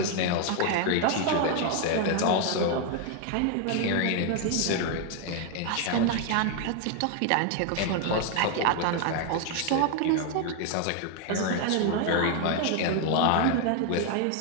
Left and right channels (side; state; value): both; different; correlation 0.00